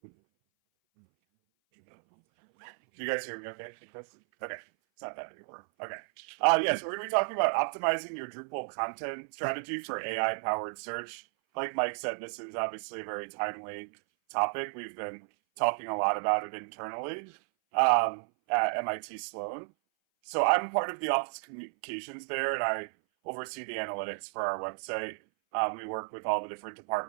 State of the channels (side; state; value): left; silent; 56 dB below the other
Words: Can you guys hear me okay? Okay. It's not that big a room. Okay. Yeah, so we're going to be talking about optimizing your Drupal content strategy for AI powered search. Like Mike said, this is obviously a very timely topic. We've been talking a lot about it internally at MIT Sloan. So I'm part of the office communications there, and I oversee the analytics for our website. We work with all the different